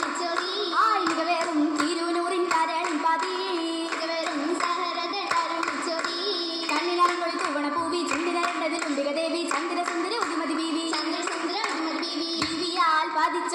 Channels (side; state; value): both; identical; correlation 1.00